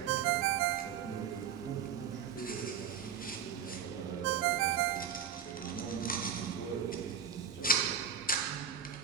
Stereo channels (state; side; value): quieter; left; 7.7 dB